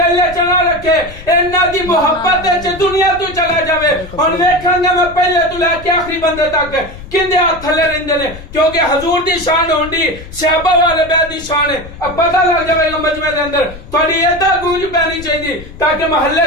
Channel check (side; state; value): left; noise; rumble, 15 dB below the sound